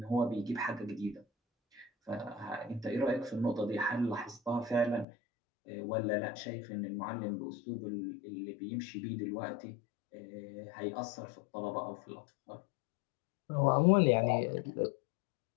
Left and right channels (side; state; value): right; drops out; at 5.1 s